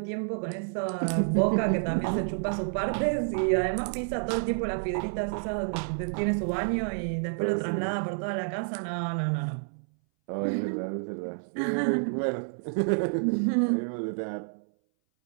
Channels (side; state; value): left; silent; 59 dB below the other